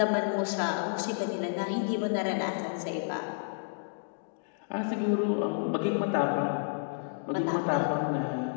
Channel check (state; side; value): silent; right; digital silence